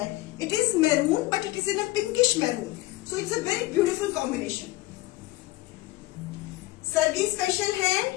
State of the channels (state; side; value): quieter; right; 18.9 dB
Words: It is maroon but it is in a pinkish maroon, so it's a very beautiful combination. Sargi special है